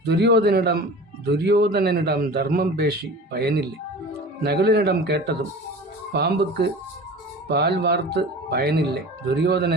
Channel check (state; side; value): normal; both; correlation 0.37